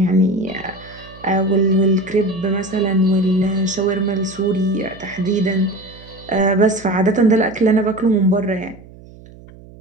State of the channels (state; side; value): noise; right; hum, 21 dB below the sound